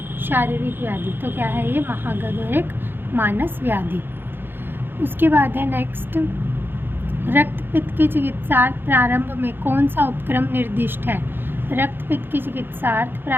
शारीरिक व्याधि। तो क्या है ये, महागध और एक मानस व्याधि। उसके बाद है नेक्स्ट, रक्तपित्त की चिकित्सार्थ प्रारंभ में कौन सा उपक्रम निर्दिष्ट है। रक्तपित्त की चिकित्सार्थ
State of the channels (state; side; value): late; left; 0.10 ms